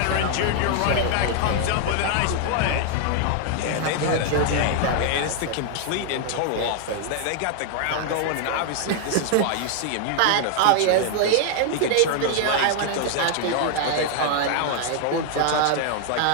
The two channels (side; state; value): both; different; correlation 0.00